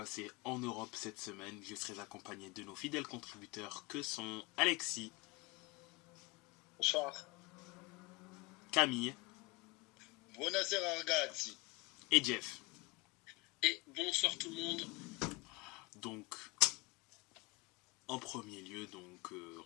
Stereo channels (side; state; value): right; quieter; 25.3 dB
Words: en Europe cette semaine, je serai accompagné de nos fidèles contributeurs que sont Alexis. Bonsoir. Camille. Buonasera ragazzi. Et Jeff. Et bonsoir tout le monde. Donc, en premier lieu,